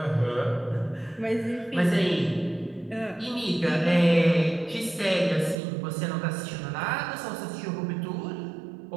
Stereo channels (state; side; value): drops out; left; at 5.6 s